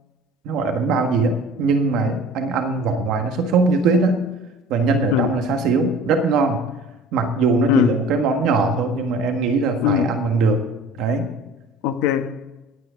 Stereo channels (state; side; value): normal; both; correlation 0.44